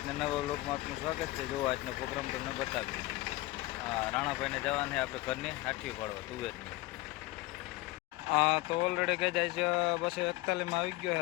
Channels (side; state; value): right; quieter; 19.7 dB